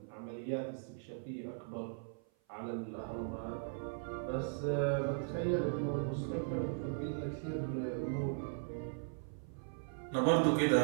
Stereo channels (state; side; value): silent; left; 52 dB below the other